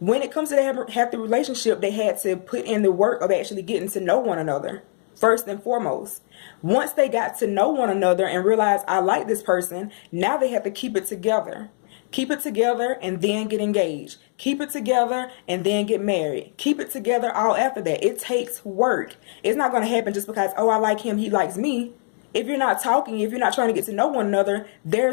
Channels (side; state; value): right; silent; 63 dB below the other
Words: when it comes to the healthy relationship, they had to put in the work of actually getting to know one another first and foremost. Once they got to know one another and realized I like this person, now they have to keep it together. Keep it together and then get engaged. Keep it together and then get married. Keep it together all after that. It takes work. It's not going to happen just because, oh, I like him, he likes me. If you're not talking, if you're not trying to get to know one another,